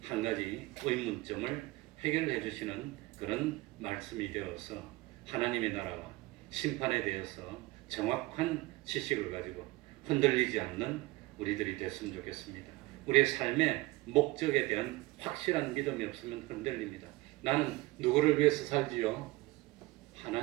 한 가지 의문점을 해결해 주시는 그런 말씀이 되어서 하나님의 나라와 심판에 대해서 정확한 지식을 가지고 흔들리지 않는 우리들이 됐으면 좋겠습니다. 우리의 삶의 목적에 대한 확실한 믿음이 없으면 흔들립니다. 나는 누구를 위해서 살지요?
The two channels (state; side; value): quieter; left; 20.5 dB